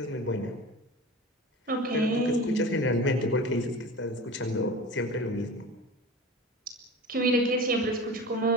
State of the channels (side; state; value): both; normal; correlation 0.34